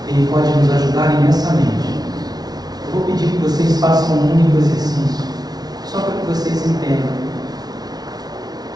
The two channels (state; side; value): late; left; 0.19 ms